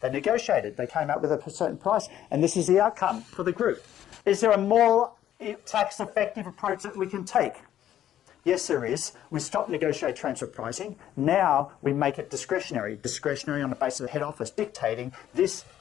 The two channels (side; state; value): right; quieter; 11.5 dB